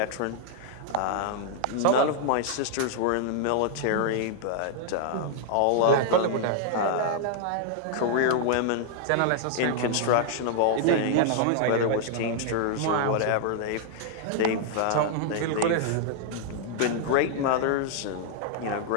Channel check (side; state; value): both; different; correlation -0.01